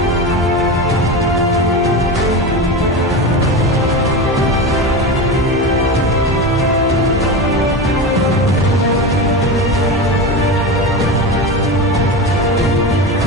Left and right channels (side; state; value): both; normal; correlation 0.23